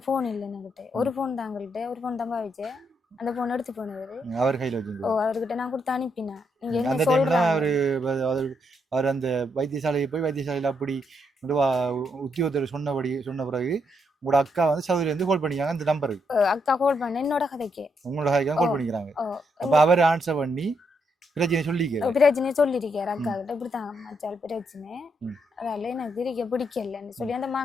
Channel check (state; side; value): normal; both; correlation 0.78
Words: ஃபோன் இல்லை என்கிட்ட. ஒரு ஃபோன் தான் எங்கள்கிட்ட, ஒரு ஃபோன் தான் பாவிச்சேன். அந்த ஃபோன் எடுத்து போனவர் அவர் கையில் வச்சு. அவர்கிட்ட நான் கொடுத்து அனுப்பினேன். நீங்கள் என்ன சொல்கிறேன், அவர் அந்த வைத்தியசாலையை போய் வைத்தியசாலையில் அப்படி உத்தியோகத்தர் சொன்ன பிறகு உங்களோட அக்கா சவுதியிலேருந்து கால் பண்ணிக்காங்க அந்த நம்பருக்கு. அக்கா கால் பண்ண என்னோட கதைக்கு, உங்களோட கதைக்கு கால் பண்ணிக்கிறாங்க. அப்போ அவர் ஆன்சர் பண்ணி பிரச்சனை சொல்லியிருக்காரு அக்கா கிட்ட, இப்படித்தாங்க மச்சால் பிரச்சனை, அதால எனக்கு இருக்க பிடிக்கலன்னு சொல்லி அந்த